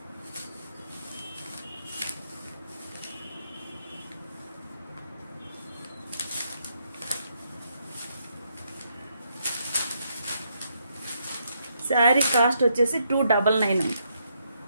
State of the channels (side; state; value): both; inverted; correlation -0.76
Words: శారీ కాస్ట్ వచ్చేసి 299.